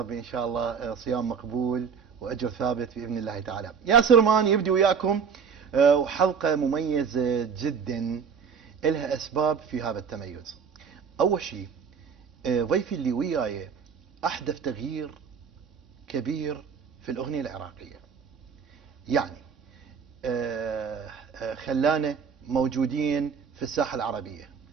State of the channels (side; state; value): left; quieter; 6.4 dB